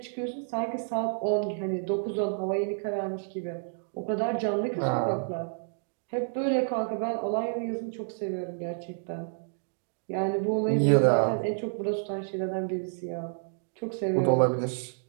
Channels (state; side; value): silent; left; digital silence